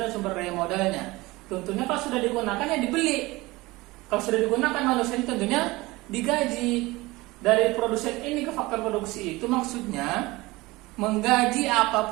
dan sumber daya modalnya. Tentunya kalau sudah digunakan ya dibeli. Kalau sudah digunakan manusia tentunya digaji. Dari produsen ini ke faktor produksi itu maksudnya menggaji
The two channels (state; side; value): quieter; left; 21.1 dB